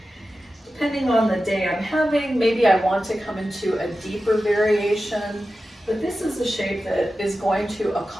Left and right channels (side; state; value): both; normal; correlation 0.93